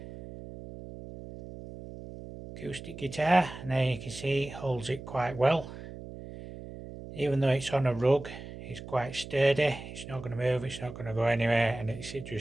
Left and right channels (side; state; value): right; noise; hum, 12 dB below the sound